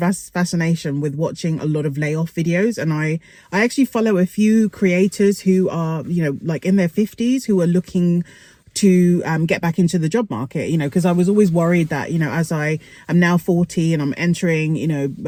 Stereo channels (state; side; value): identical; both; correlation 1.00